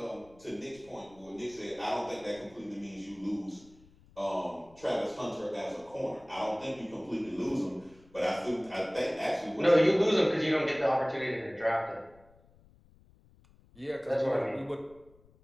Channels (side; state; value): left; noise; rumble, 27 dB below the sound